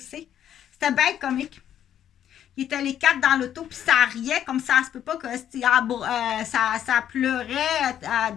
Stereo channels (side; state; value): right; quieter; 10.3 dB